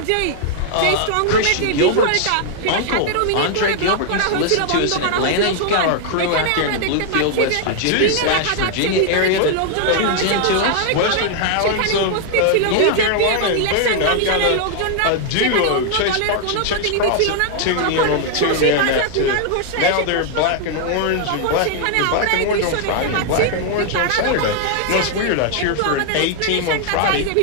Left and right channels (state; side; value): different; both; correlation 0.00